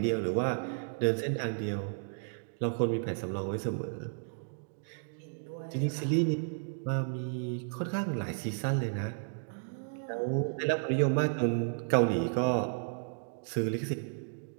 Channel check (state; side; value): silent; left; digital silence